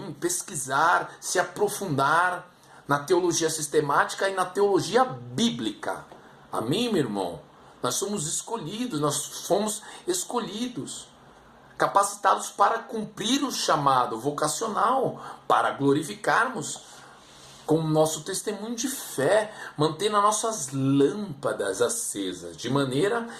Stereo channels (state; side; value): identical; both; correlation 1.00